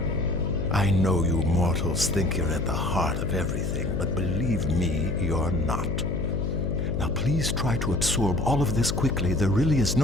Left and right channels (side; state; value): left; noise; hum, 2 dB below the sound